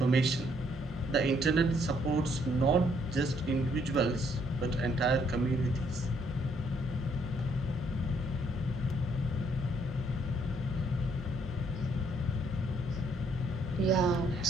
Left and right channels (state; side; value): noise; right; hum, 20 dB below the sound